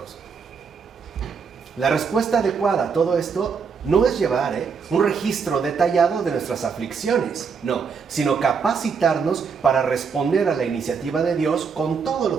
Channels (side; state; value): left; quieter; 5.8 dB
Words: La respuesta adecuada a todo esto no es llevar un registro detallado de nuestras aflicciones, no, sino capacitarnos para responder a la iniciativa de Dios con todo